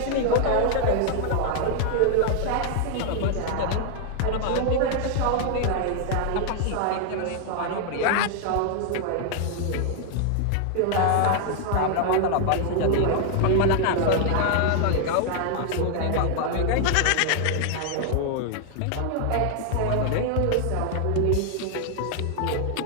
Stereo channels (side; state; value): both; different; correlation 0.00